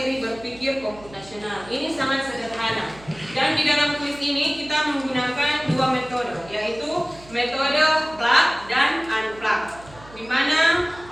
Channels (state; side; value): noise; right; hum, 21 dB below the sound